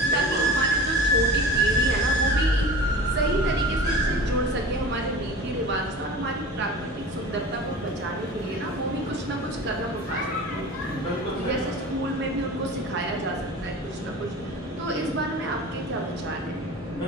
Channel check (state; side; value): normal; both; correlation 0.37